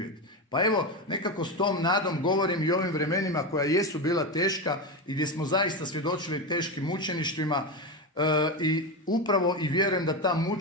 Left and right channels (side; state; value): both; normal; correlation 0.16